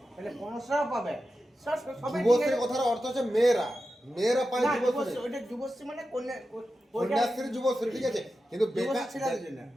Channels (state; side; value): normal; both; correlation 0.91